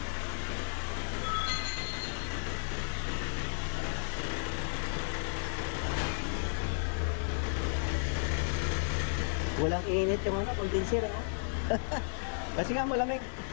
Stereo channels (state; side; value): silent; right; digital silence